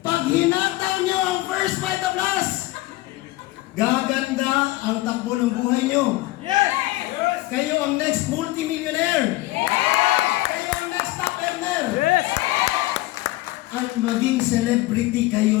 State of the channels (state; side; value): quieter; right; 18.5 dB